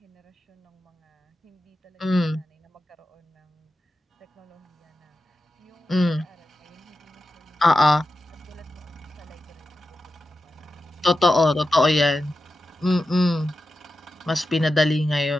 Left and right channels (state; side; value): normal; both; correlation 0.90